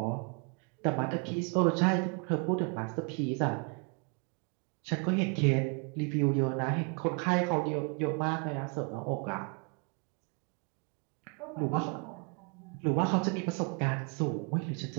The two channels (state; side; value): quieter; left; 35.9 dB